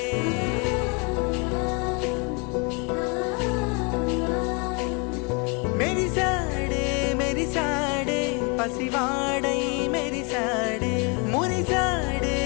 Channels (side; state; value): right; quieter; 33.3 dB